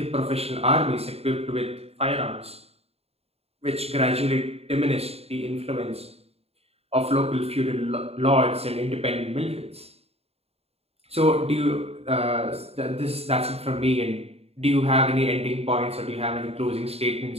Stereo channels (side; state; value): left; late; 0.29 ms